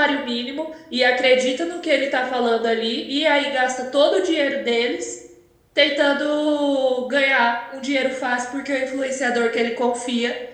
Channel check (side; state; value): both; identical; correlation 1.00